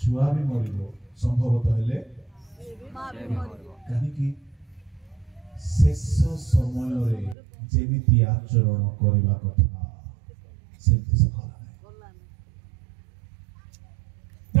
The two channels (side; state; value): left; drops out; at 7.4 s